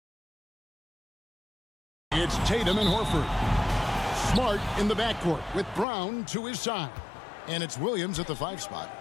It's Tatum and Horford. Smart in the backcourt with Brown to his side. And it's Williams at the 5 spot.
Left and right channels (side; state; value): right; drops out; at 5.9 s